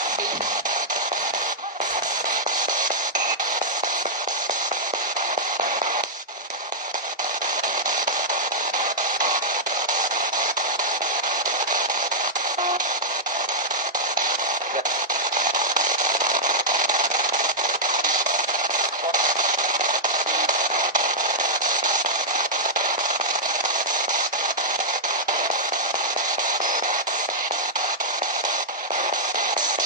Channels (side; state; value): both; normal; correlation -0.09